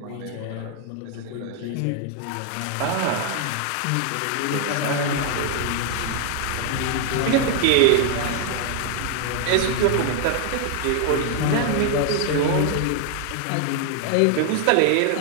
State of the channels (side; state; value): both; different; correlation 0.00